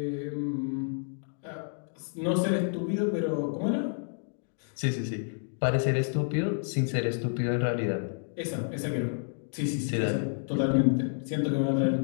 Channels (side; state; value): right; silent; digital silence